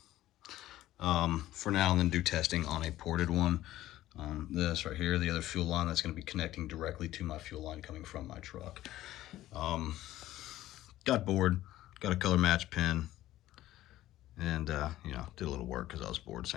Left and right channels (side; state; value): right; quieter; 14.7 dB